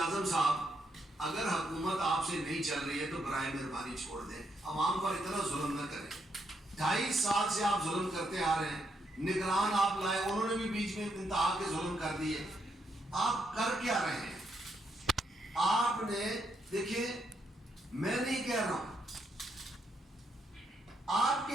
اعظم صاحب اگر حکومت آپ سے نہیں چل رہی ہے تو برائے مہربانی چھوڑ دیں. عوام پر اتنا ظلم نہ کریں. 2.5 سال سے آپ ظلم کرتے آ رہے ہیں. نگران آپ لائے انہوں نے بھی بیچ میں انتہا کے ظلم کر دیے. آپ کر کیا رہے ہیں؟ آپ نے دیکھیں میں نہیں کہہ رہا ہوں آپ کے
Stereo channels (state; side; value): normal; both; correlation 0.78